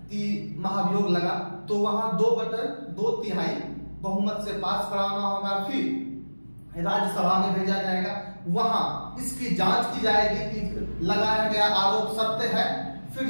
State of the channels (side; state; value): both; inverted; correlation -1.00